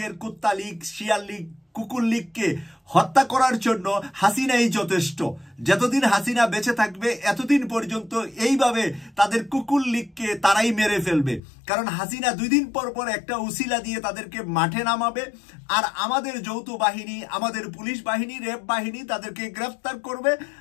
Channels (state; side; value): drops out; right; at 11.4 s